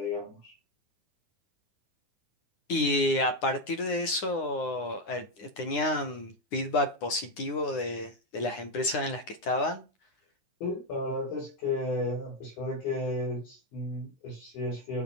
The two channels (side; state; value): right; late; 9.7 ms